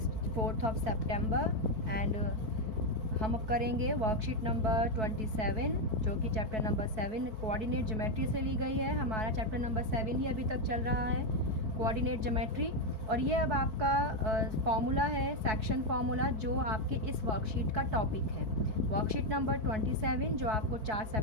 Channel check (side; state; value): left; late; 4.6 ms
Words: 4th of September and हम अब करेंगे worksheet number 27 जो कि चैप्टर नंबर 7 कोऑर्डिनेट ज्योमेट्री से ली गई है। हमारा चैप्टर नंबर 7 ही अभी तक चल रहा है, कोऑर्डिनेट ज्योमेट्री। और ये अब आपका फार्मूला है, सेक्शन फार्मूला, जो आपके इस वर्कशीट का टॉपिक है। वर्कशीट नंबर 27 जो आपको 4